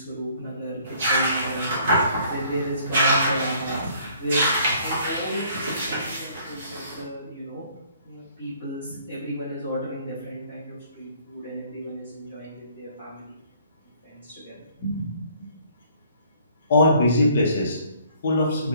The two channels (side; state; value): both; inverted; correlation -0.59